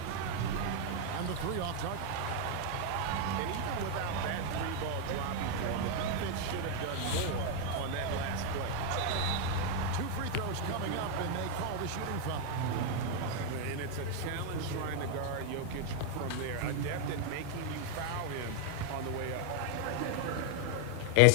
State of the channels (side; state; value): both; different; correlation 0.00